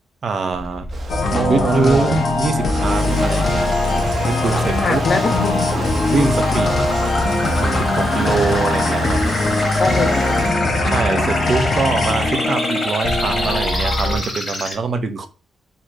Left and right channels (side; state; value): both; normal; correlation 0.81